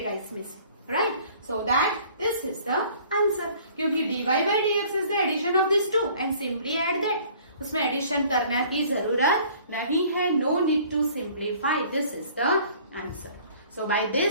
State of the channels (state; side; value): inverted; both; correlation -0.53